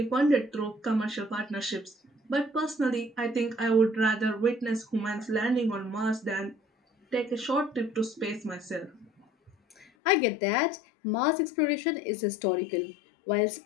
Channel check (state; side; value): drops out; right; at 9.9 s